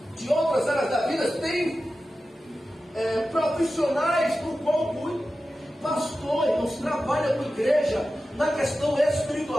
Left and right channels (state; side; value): normal; both; correlation 0.93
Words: de outras áreas da vida, tem profissionais do qual cuida. Pastor, irmãos, trabalha com a igreja na questão